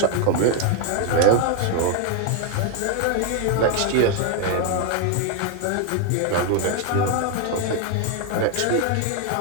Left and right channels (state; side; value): different; both; correlation 0.01